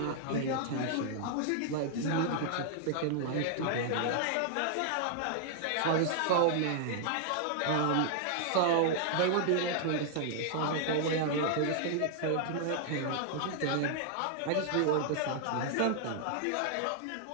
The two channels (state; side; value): different; both; correlation 0.00